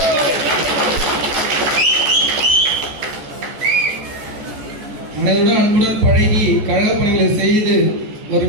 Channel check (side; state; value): left; late; 14 ms